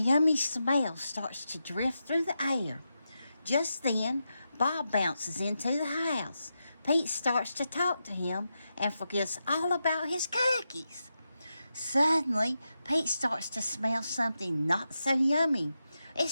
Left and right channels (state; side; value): inverted; both; correlation -0.88